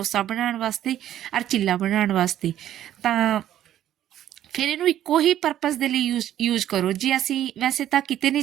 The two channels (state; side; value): quieter; left; 11.8 dB